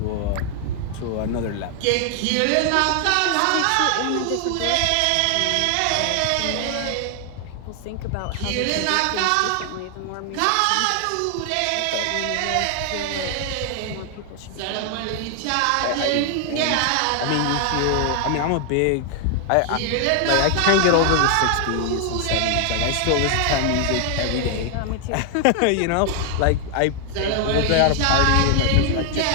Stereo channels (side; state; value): both; different; correlation 0.00